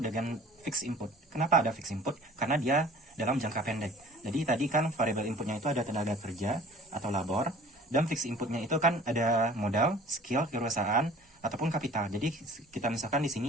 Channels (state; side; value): normal; both; correlation 0.47